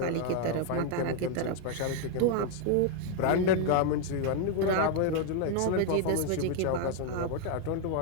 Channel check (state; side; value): different; both; correlation 0.00